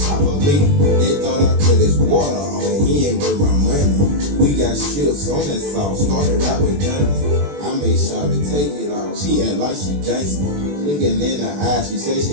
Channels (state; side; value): late; left; 21 ms